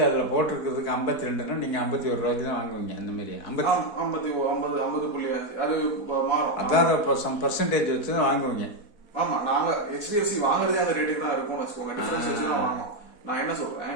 அதுல போட்டிருக்கிறதுக்கு 52ன்னா நீங்க 51 ரூபாய்க்கு தான் வாங்குவீங்க. அந்த மாதிரி 50.5 அது மாறும். அதான் பர்சன்டேஜ் வச்சு தான் வாங்குவீங்க. ஆமா, நாங்க HDFC வாங்குறதே அந்த ரேட்டுக்கு தான் இருக்கும்னு வச்சுக்கோங்க. டிஃபரன்ஸ் வச்சு தான் வாங்குவோம். நான் என்ன சொல்றேன்,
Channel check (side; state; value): right; late; 4.1 ms